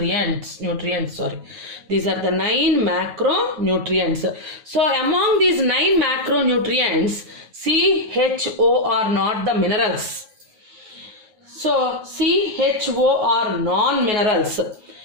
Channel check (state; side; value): late; left; 9.4 ms